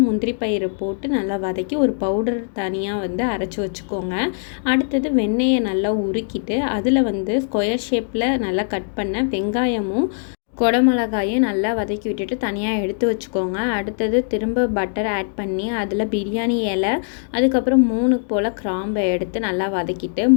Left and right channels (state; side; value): silent; right; digital silence